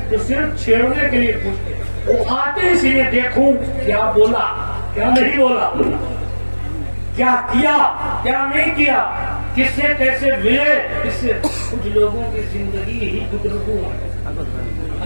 جو صرف چھیڑنے کے لیے پوچھتے ہیں, وہ آتے اسی لیے دیکھوں کیا بولا کیا نہیں بولا, کیا کیا کیا نہیں کیا, کس سے کیسے ملے. اس سے کچھ لوگوں کی زندگی ہی گزرگو ہے.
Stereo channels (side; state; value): both; inverted; correlation -1.00